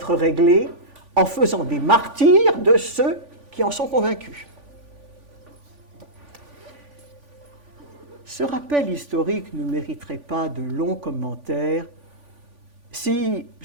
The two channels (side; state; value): left; late; 3.5 ms